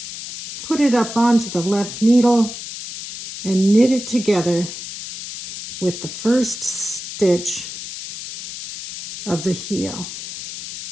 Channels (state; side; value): noise; left; hiss, 10 dB below the sound